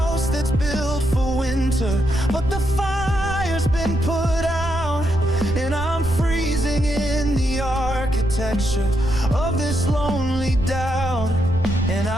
that's built for winter, but the fire's been put out, and I'm freezing in the architecture of this lonely doubt. And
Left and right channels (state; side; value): noise; right; rumble, 8 dB below the sound